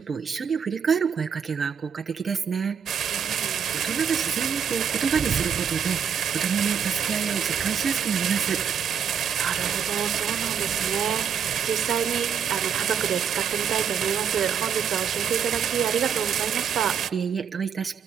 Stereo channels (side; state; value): left; quieter; 7.6 dB